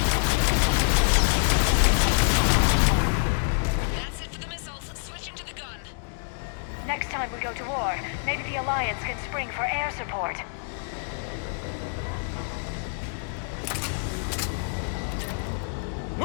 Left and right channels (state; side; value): silent; right; digital silence